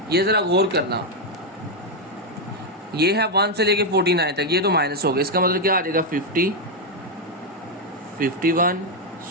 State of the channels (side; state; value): both; normal; correlation 0.02